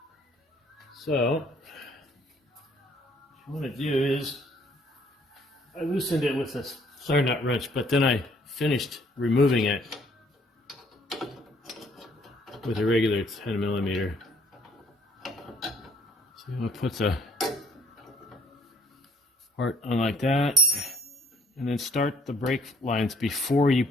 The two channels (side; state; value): both; normal; correlation 0.63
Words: So, what you want to do is, I loosened it with this flare nut wrench, but then I finished removing it with a regular 10 millimeter. So you want to put the part on like that, and then start the brake lines before you